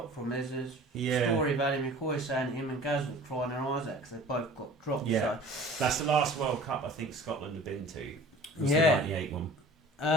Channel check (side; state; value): both; normal; correlation 0.45